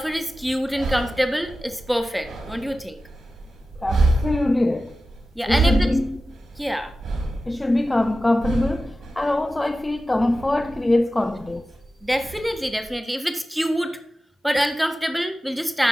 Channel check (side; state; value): both; normal; correlation 0.94